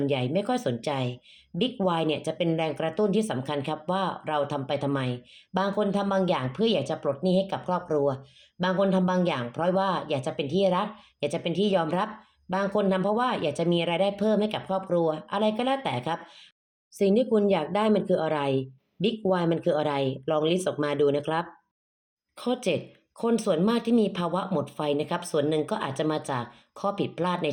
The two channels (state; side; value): identical; both; correlation 1.00